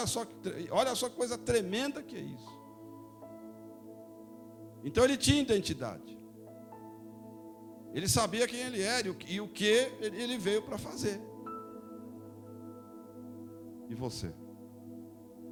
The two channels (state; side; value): identical; both; correlation 1.00